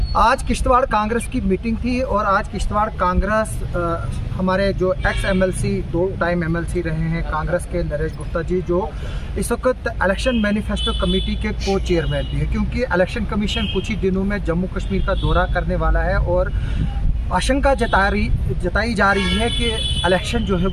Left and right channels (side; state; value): both; identical; correlation 1.00